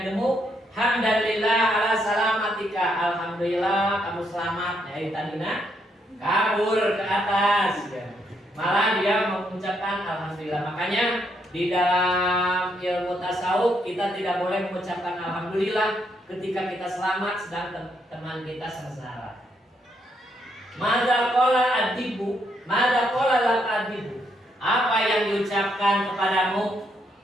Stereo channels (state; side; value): normal; both; correlation 0.76